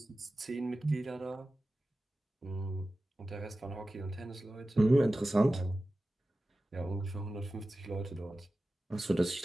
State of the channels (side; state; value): both; normal; correlation 0.95